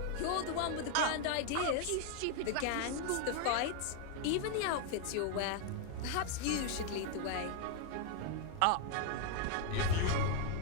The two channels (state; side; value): different; both; correlation 0.00